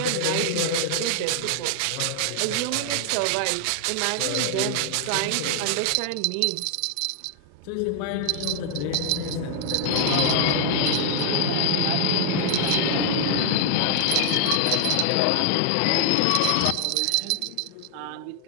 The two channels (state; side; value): different; both; correlation 0.00